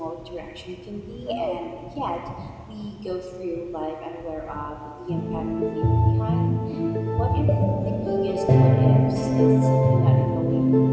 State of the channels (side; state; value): both; identical; correlation 1.00